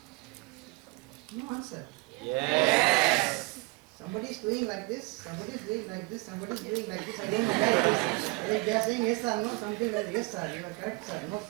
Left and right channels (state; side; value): quieter; left; 25.5 dB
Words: No answer. Yes. Somebody is doing like this, somebody is doing like this, somebody is doing like this. I don't know why it is. They are saying yes or no, something like yes sir, you are correct sir, no